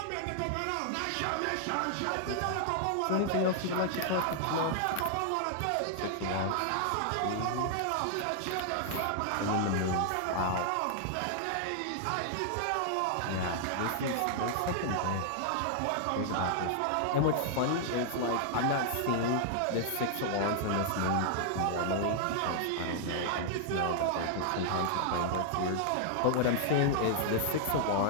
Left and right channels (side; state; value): both; different; correlation -0.01